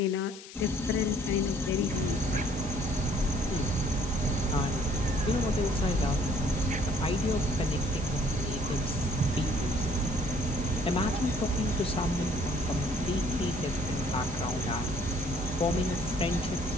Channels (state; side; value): noise; left; hiss, 16 dB below the sound